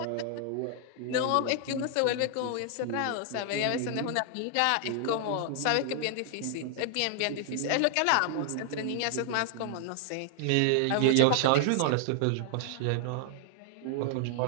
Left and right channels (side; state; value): both; different; correlation 0.00